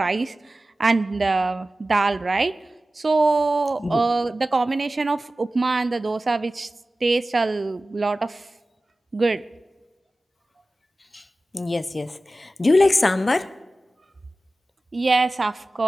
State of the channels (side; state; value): both; normal; correlation 0.96